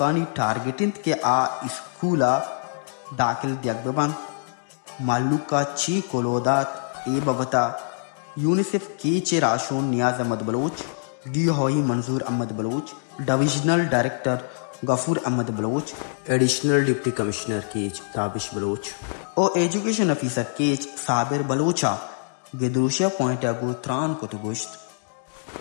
ٹارگیٹنت کے آ اسکولا داخل دیگ ببن مالوکا چی کولودات ای ببتا یونیسیف کیچے راشون نیاز احمد بلوچ ڈی ہوئی Manzoor Ahmed Baloch divisional director Ghafoor Ahmed Baloch additional deputy commissioner Kech Tabish Baloch او ایجوکیشن افیسر کیچ صابر بلوچا گدروشیا پوائنٹ اگو تران کو تو گوشت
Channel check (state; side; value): silent; right; digital silence